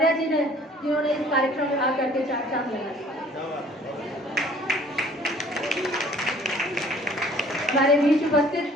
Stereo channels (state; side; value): normal; both; correlation 0.54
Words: जी ने, जिन्होंने इस कार्यक्रम में आकर के चार चांद लगाए। हमारे बीच